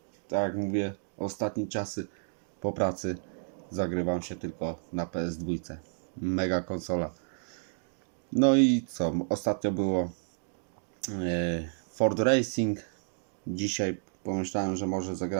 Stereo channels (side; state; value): left; silent; digital silence